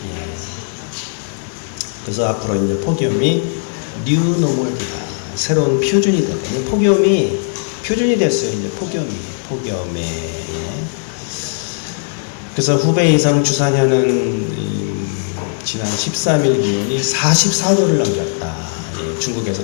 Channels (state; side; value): silent; right; digital silence